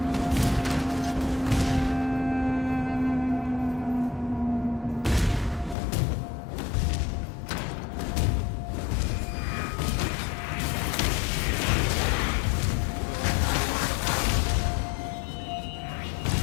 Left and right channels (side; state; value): right; drops out; at 5.8 s